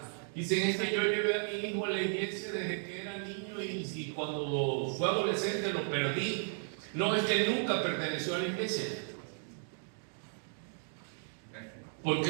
dicen: es que yo llevé a mi hijo a la iglesia desde que era niño y cuando fue adolescente lo perdí. No, es que nunca perteneció a la iglesia. Porque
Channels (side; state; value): left; silent; 55 dB below the other